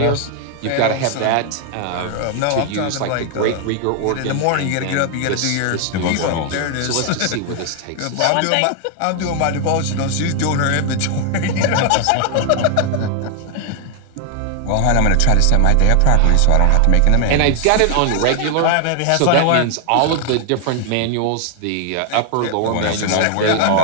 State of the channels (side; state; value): both; different; correlation 0.00